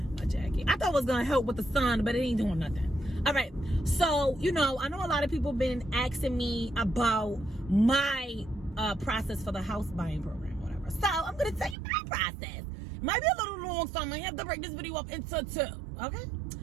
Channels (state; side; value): drops out; left; at 11.8 s